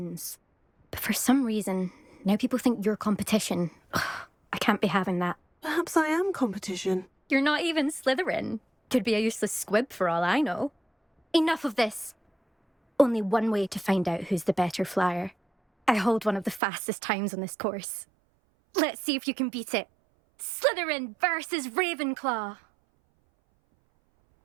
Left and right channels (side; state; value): left; drops out; at 16.6 s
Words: But for some reason, now people think you're competition. Ugh, I can't be having that. Perhaps I am competition. You're not even Slytherin. Could be a useless squib for all I know. Enough of this. Only one way to find out who's the better flyer. I hold one of the fastest times on this course. Let's see if you can beat it. Slytherin versus Ravenclaw.